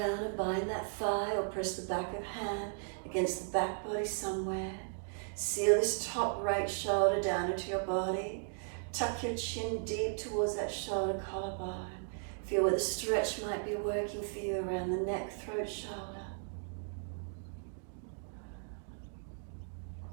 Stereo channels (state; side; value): silent; left; digital silence